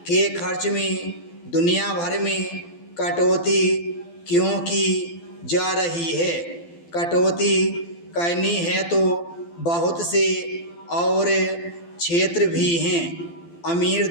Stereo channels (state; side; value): late; right; 12 ms